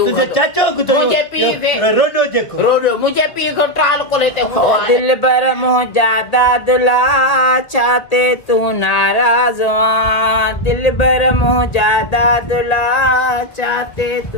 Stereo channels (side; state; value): right; late; 2.0 ms